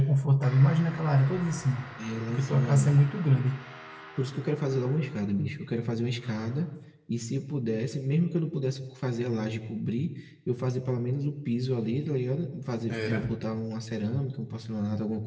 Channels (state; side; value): identical; both; correlation 1.00